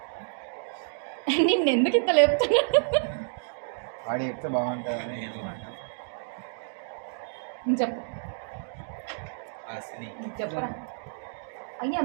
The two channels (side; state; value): left; silent; digital silence